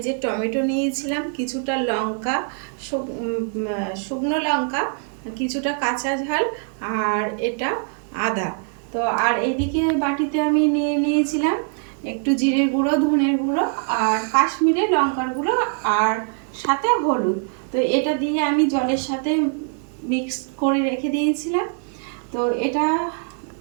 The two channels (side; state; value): left; silent; 55 dB below the other